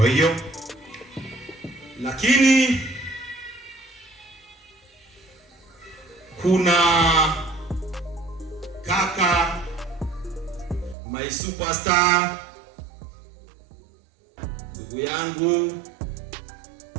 hiyo Lakini kuna kaka my superstar, ndugu yangu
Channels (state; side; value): drops out; left; at 11.0 s